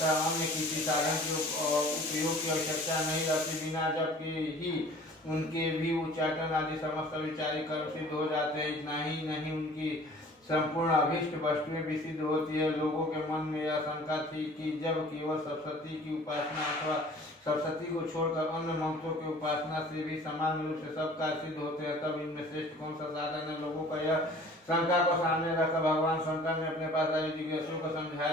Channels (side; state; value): both; normal; correlation 0.48